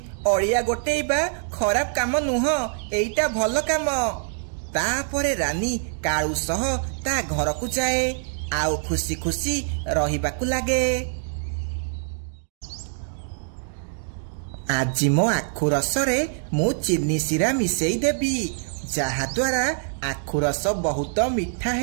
अड़िया गोटेइबा खराब काम नुह, एइटा भल काम। तापरे रानी कालू सह ता घर को जाए आउ खुशी खुशी रहिबाकू लागे। आजि मो आखु रसरे मु चीनी सिरा मिसेई देबी, जहा द्वारा आखु रस बहुत मिठा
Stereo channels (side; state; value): left; silent; digital silence